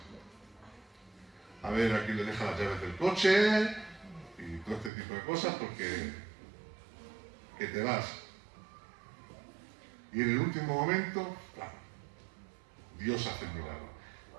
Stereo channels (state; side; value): drops out; left; at 4.9 s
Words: A ver, aquí le dejas las llaves del coche y todo este tipo de cosas porque que te vas. Y en el último momento, claro, Dios hace el milagro.